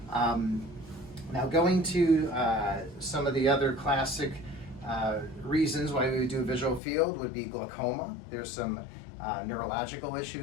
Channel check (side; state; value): right; drops out; at 6.8 s